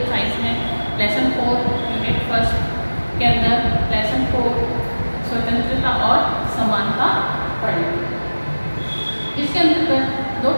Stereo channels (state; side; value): inverted; both; correlation -1.00